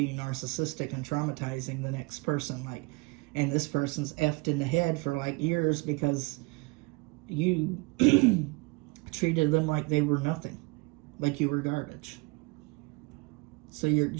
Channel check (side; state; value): left; quieter; 27.2 dB